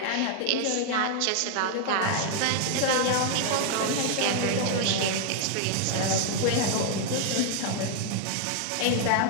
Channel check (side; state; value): both; different; correlation 0.00